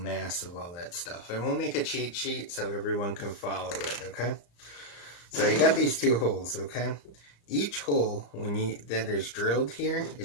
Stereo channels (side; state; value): right; late; 34 ms